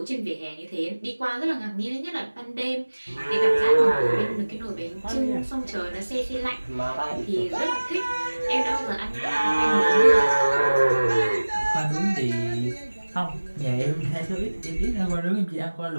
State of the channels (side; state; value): both; inverted; correlation -1.00